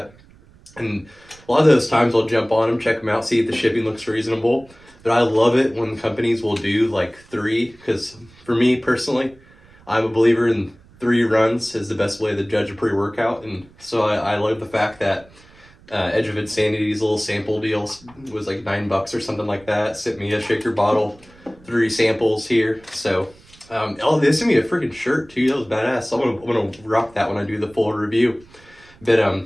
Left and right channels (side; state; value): right; noise; rumble, 27 dB below the sound